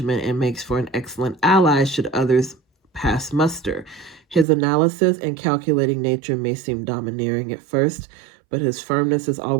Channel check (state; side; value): drops out; left; at 4.5 s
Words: and makes for an excellent ally should others pass muster. His analysis and calculating nature may seem domineering at first, but his firmness is